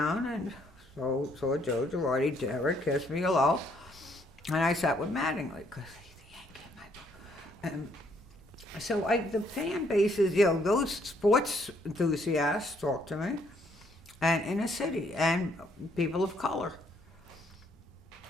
and saw Joe Girardi, Derek, kissed me hello, and I sat with Mattingly, because he's the Yankee in my book. And so the fan base is, those sports enthusiasts talk to me, and inner city, and people of color.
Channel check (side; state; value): both; normal; correlation 0.69